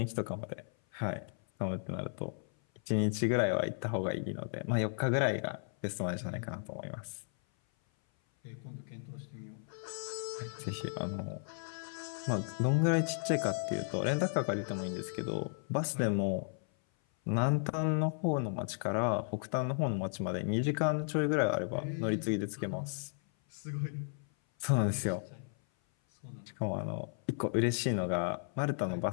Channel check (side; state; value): right; silent; 55 dB below the other